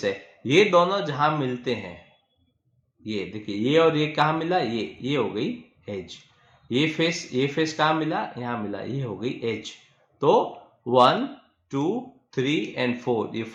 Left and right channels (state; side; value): identical; both; correlation 1.00